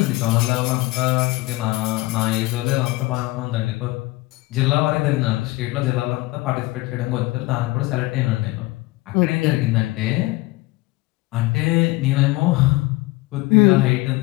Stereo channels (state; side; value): quieter; right; 20.9 dB